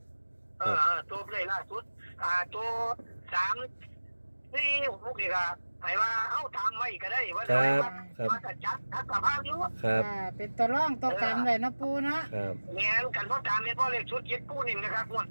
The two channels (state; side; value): inverted; both; correlation -1.00